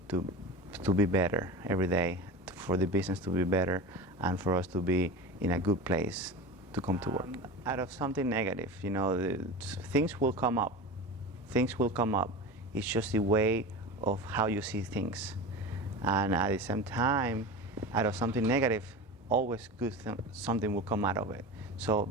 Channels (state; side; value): normal; both; correlation 0.29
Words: to be better every day, for the business to be better and for us to be in a good place to come to work. Out of something negative, you know, things will come up. Things will come up. It's just the way of how you see things. And at the same time, out of something negative, always good something will come out of it. So